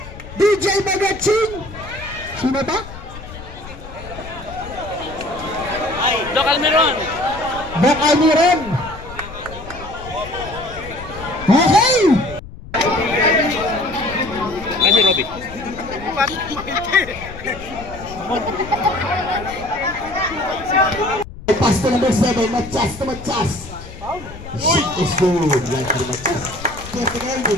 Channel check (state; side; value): noise; left; rumble, 14 dB below the sound